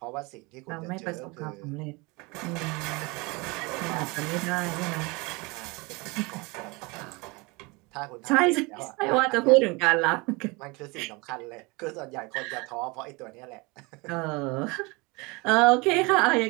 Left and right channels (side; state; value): left; quieter; 26.5 dB